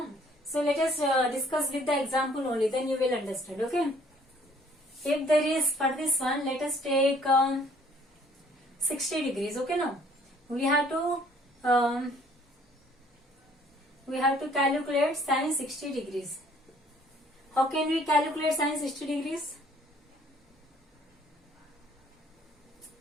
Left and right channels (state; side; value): normal; both; correlation 0.59